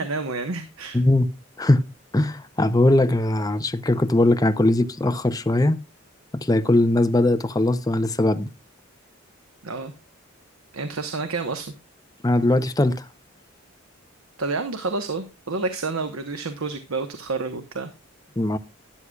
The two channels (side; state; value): both; normal; correlation 0.77